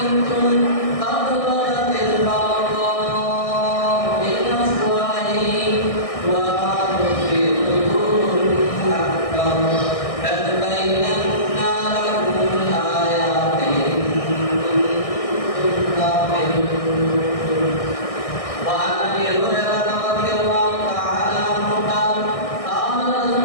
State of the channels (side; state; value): right; late; 1.6 ms